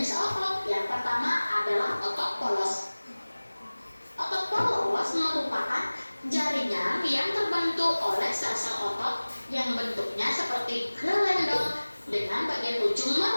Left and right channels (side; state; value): both; inverted; correlation -1.00